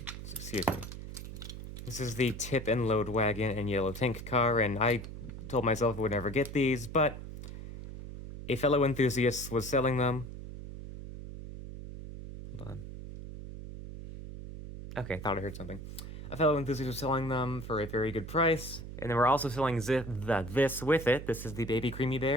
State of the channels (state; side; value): noise; right; hum, 10 dB below the sound